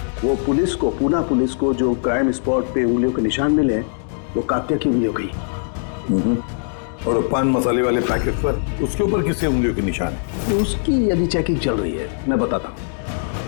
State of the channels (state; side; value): silent; right; digital silence